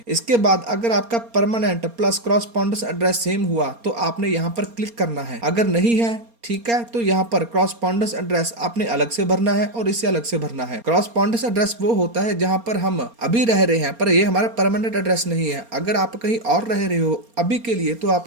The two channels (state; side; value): late; left; 4.3 ms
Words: इसके बाद अगर आपका परमानेंट प्लस क्रॉसपॉन्डेंस एड्रेस सेम हुआ तो आपने यहाँ पर क्लिक करना है, अगर नहीं है, ठीक है, तो यहाँ पर क्रॉसपॉन्डेंस एड्रेस आपने अलग से भरना है और इसे अलग से भरना है। क्रॉसपॉन्डेंस एड्रेस वो होता है जहाँ पर हम अभी रह रहे हैं पर ये हमारा परमानेंट एड्रेस नहीं है। अगर आप कहीं और रह रहे हो अभी के लिए तो